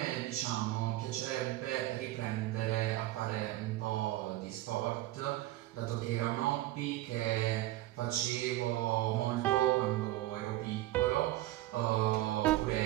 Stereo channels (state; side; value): quieter; left; 16.3 dB